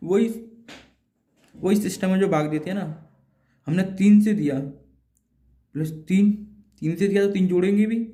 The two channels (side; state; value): both; identical; correlation 1.00